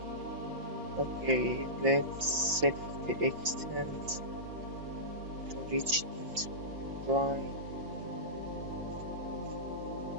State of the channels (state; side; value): late; left; 5.7 ms